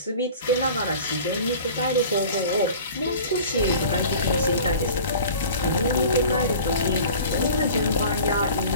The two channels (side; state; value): both; inverted; correlation -0.42